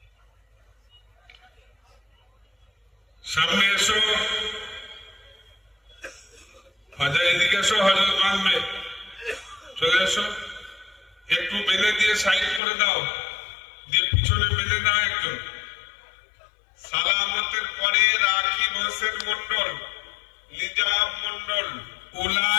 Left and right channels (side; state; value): right; drops out; at 12.6 s